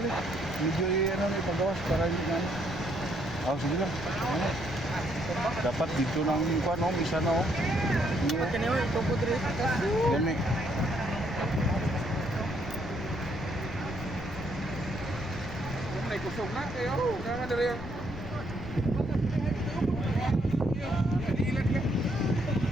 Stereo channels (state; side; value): noise; left; rumble, 10 dB below the sound